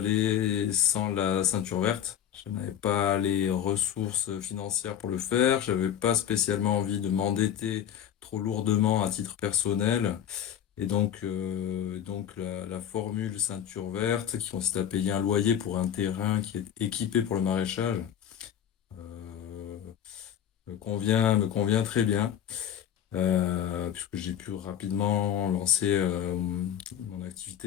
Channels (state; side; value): quieter; right; 9.8 dB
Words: sans la ceinture verte. Je n'avais pas les ressources financières pour le faire. J'avais pas spécialement envie de m'endetter trop lourdement à titre personnel. Et donc la formule ceinture verte, qui consiste à payer un loyer pour un terrain qui est équipé pour le maraîchage, me convient très bien. puisque j'ai pu rapidement lancer mon